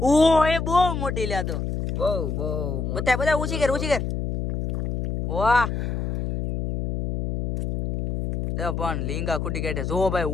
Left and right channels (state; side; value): noise; left; hum, 2 dB below the sound